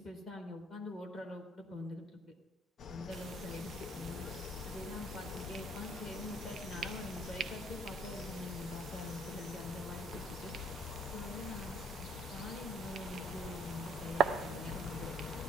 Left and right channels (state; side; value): normal; both; correlation 0.63